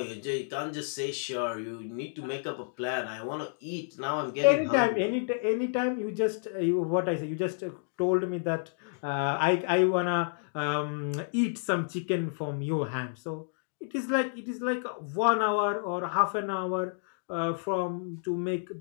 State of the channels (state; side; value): silent; right; digital silence